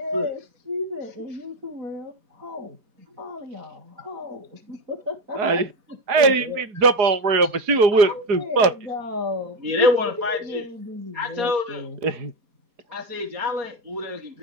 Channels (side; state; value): left; late; 4.8 ms